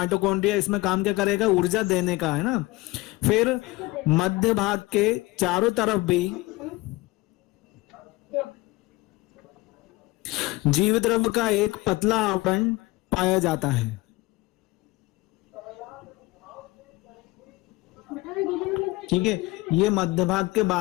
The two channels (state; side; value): quieter; right; 21.0 dB